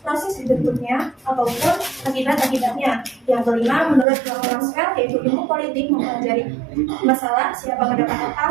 dibentuknya ataupun akibat-akibatnya. Yang kelima menurut Maxwell, yaitu ilmu politik mempelajari masalah siapa mendapat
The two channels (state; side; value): drops out; left; at 4.0 s